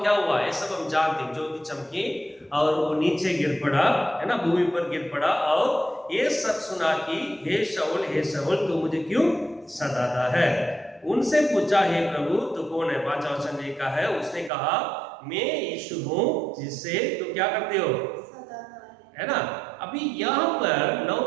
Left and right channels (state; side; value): drops out; left; at 14.5 s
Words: क्या हुआ? ये सब हम जानते हैं, ज्योति चमकी और वो नीचे गिर पड़ा, है ना, भूमि पर गिर पड़ा, और ये सब सुना कि हे शाऊल तू मुझे क्यों सताता है? उनसे पूछा, हे प्रभु तू कौन है? 5 वचन लिखा है, उसने कहा मैं यीशु हूं जिससे तुम क्या करते हो? है ना। अभी यहाँ पर 9